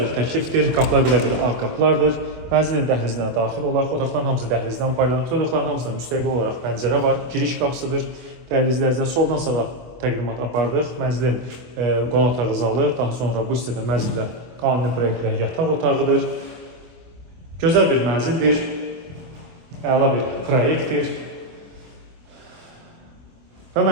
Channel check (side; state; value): left; late; 25 ms